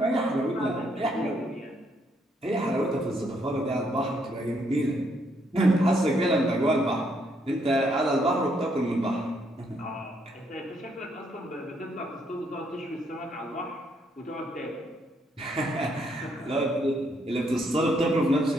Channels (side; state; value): both; normal; correlation 0.72